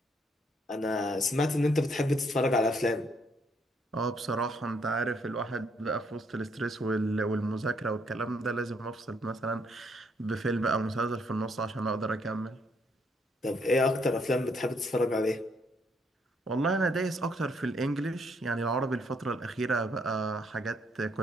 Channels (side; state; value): both; normal; correlation 0.71